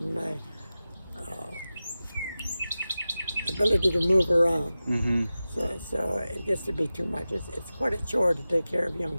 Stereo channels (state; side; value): inverted; both; correlation -0.94